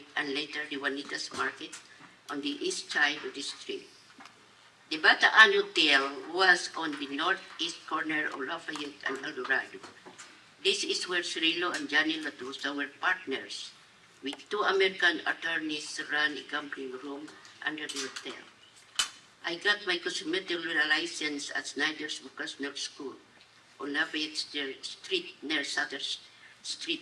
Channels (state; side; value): identical; both; correlation 1.00